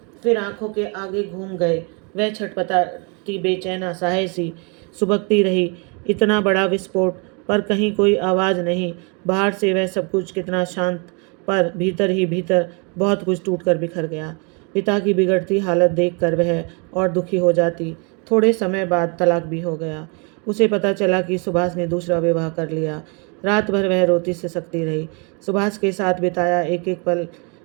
फिर आंखों के आगे घूम गए। वह छटपटाती, बेचैन, असहाय सी सुबकती रही। इतना बड़ा विस्फोट, पर कहीं कोई आवाज़ नहीं। बाहर से वह सब कुछ कितना शांत, पर भीतर ही भीतर बहुत कुछ टूटकर बिखर गया। पिता की बिगड़ती हालत देखकर वह और दुखी हो जाती। थोड़े समय बाद तलाक भी हो गया। उसे पता चला कि सुभाष ने दूसरा विवाह कर लिया। रात भर वह रोती सिसकती रही। सुभाष के साथ बिताया एक एक पल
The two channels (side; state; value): left; quieter; 33.7 dB